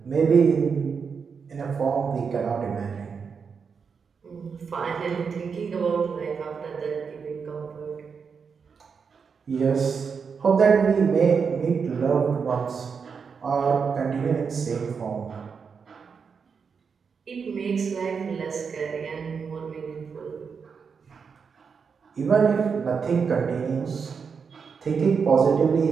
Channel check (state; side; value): quieter; left; 5.9 dB